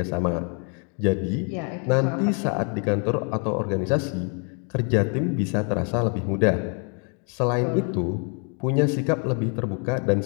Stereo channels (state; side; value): quieter; right; 39.3 dB